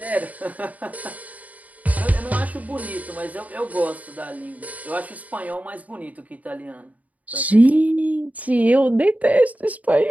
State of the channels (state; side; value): late; left; 0.073 ms